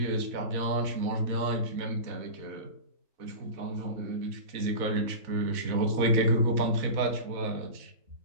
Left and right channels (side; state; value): left; late; 4.0 ms